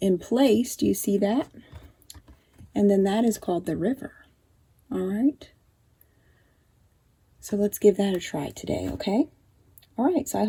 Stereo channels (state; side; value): identical; both; correlation 1.00